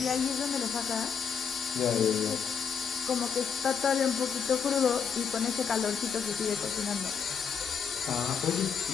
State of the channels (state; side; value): quieter; right; 6.7 dB